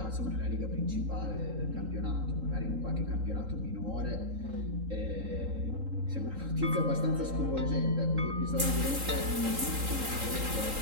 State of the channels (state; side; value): late; left; 3.8 ms